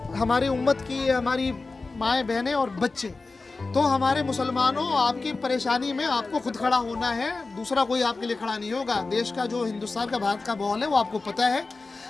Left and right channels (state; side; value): quieter; right; 3.7 dB